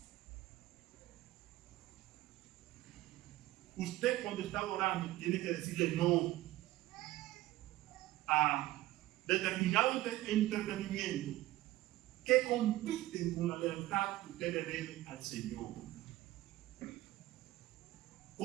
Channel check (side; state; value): left; quieter; 16.3 dB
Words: Usted, cuando está orando, tiene que decirle no a determinado entretenimiento que compiten con la lealtad que usted le debe al Señor.